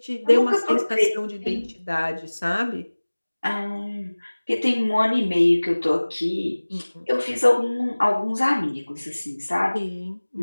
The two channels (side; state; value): both; inverted; correlation -1.00